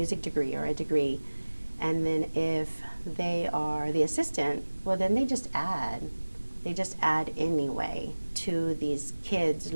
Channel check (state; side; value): inverted; both; correlation -1.00